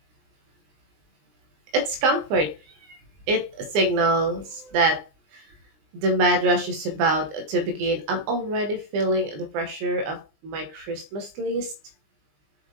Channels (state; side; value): late; left; 19 ms